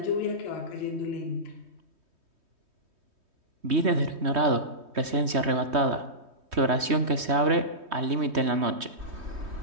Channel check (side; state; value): left; late; 3.2 ms